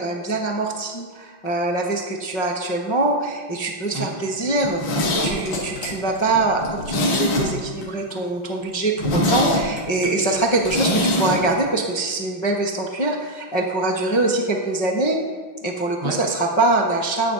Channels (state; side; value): late; right; 5.5 ms